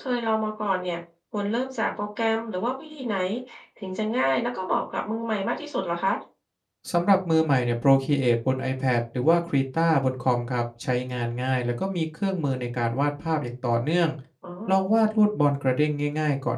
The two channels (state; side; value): identical; both; correlation 1.00